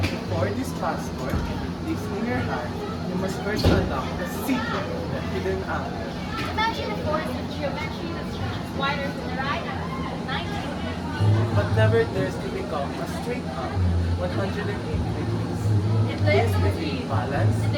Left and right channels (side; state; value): both; identical; correlation 1.00